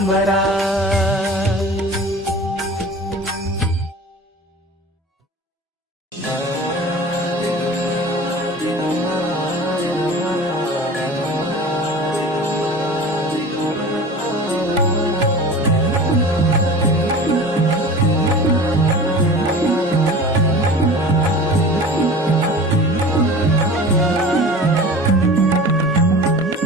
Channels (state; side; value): normal; both; correlation 0.38